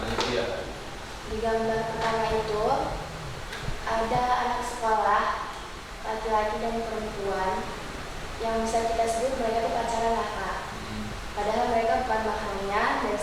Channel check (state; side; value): identical; both; correlation 1.00